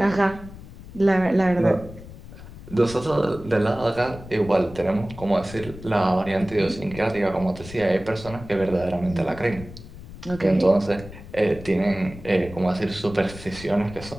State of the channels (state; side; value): noise; left; rumble, 15 dB below the sound